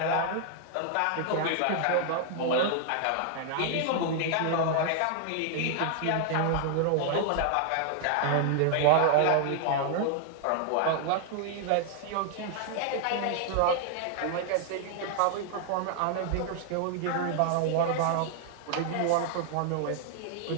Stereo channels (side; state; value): both; different; correlation 0.00